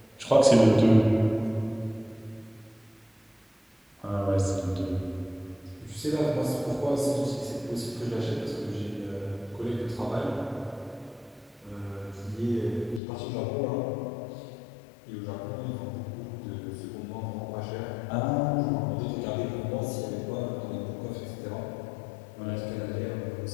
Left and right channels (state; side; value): drops out; right; at 13.0 s